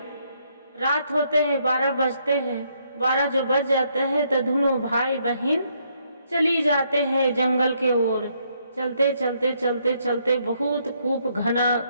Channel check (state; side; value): inverted; both; correlation -0.73